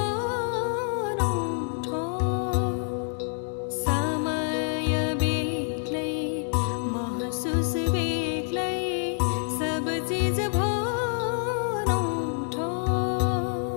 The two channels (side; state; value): right; silent; 60 dB below the other